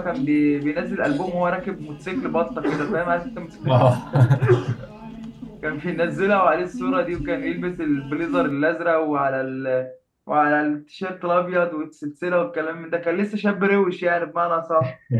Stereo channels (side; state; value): both; identical; correlation 1.00